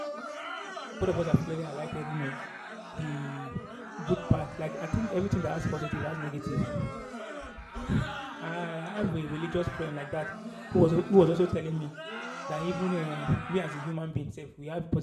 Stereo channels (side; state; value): both; identical; correlation 1.00